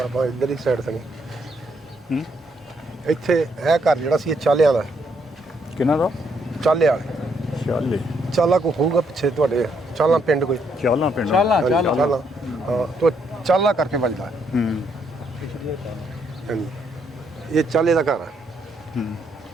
ਆਪਾਂ ਇੱਧਰ ਹੀ ਸਾਈਡ ਤੋਂ। ਇੱਥੇ ਇਹ ਘਰ ਜਿਹੜਾ ਸੀ ਇਹ ਚਾਲਿਆਂ ਦਾ। ਕਿਹਨਾਂ ਦਾ? ਚਾਲੇ ਵਾਲੇ। ਚਾਲੇ ਚਾਲਾ ਕੋ ਹੋਊਗਾ ਪਿੱਛੇ ਤੁਹਾਡੇ? ਚਾਲਾ ਪਿੰਡ ਕੋਈ? ਚਾਲਾ ਪਿੰਡ। ਚਾਲਾ ਚਾਲਾ ਹਾਂ ਤੋਂ ਚਾਲਾ ਕਰਕੇ ਵੱਜਦਾ। ਹਾਂਜੀ ਇਹ ਚਾਲੇ ਦਾ ਘਰ ਆ।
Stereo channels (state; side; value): normal; both; correlation 0.73